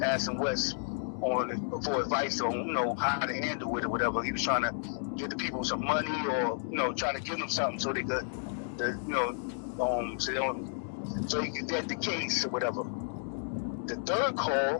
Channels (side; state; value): right; silent; digital silence